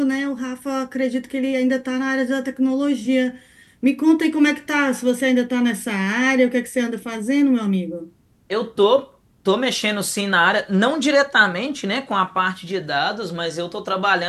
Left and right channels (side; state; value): both; identical; correlation 1.00